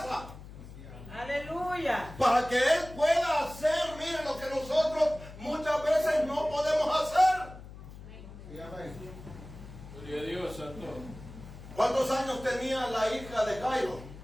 Aleluya. Para que Él pueda hacer, miren, lo que nosotros muchas veces no podemos hacer. Gloria a Dios, santo. ¿Cuántos años tenía la hija de Jairo?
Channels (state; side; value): noise; left; hum, 15 dB below the sound